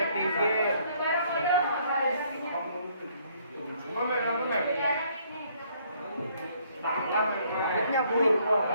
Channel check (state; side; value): inverted; both; correlation -0.65